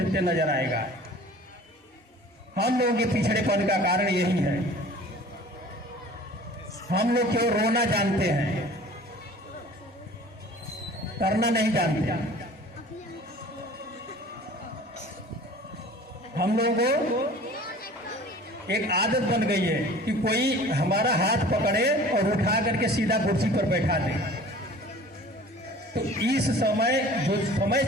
नजर आएगा। हम लोगों के पिछड़ेपन का कारण यही है, हम लोग केवल रोना जानते हैं, करना नहीं जानते। हम लोगों को एक आदत बन गई है कि कोई हमारा हाथ पकड़े और उठा करके सीधा कुर्सी पर बैठा दे। तो इस समय जो समय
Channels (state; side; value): normal; both; correlation 0.45